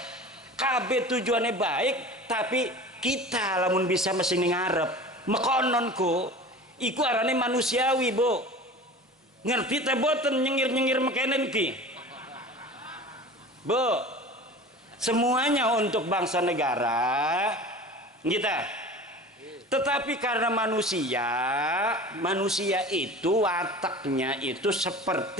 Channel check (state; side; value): normal; both; correlation 0.37